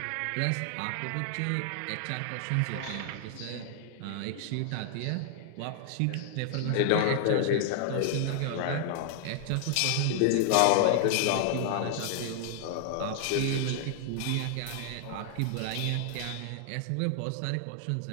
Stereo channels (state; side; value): different; both; correlation 0.00